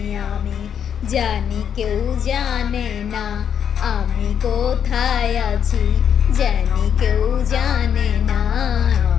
আমি। জানি কেউ জানে না আমি কোথায় আছি, জানি কেউ জানে না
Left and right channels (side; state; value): right; quieter; 8.3 dB